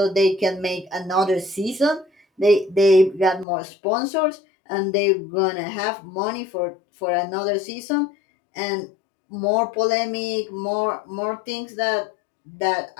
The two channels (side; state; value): right; drops out; at 3.5 s